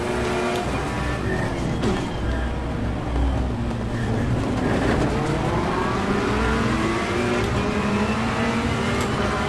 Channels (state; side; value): identical; both; correlation 1.00